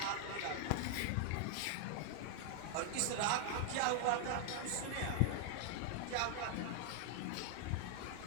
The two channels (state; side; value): different; both; correlation 0.00